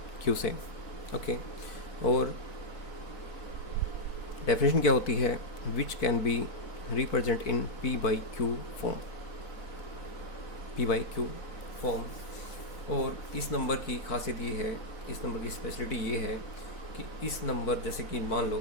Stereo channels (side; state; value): right; late; 4.1 ms